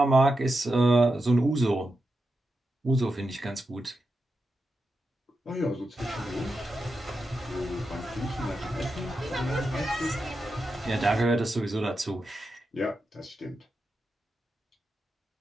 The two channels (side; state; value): both; normal; correlation 0.88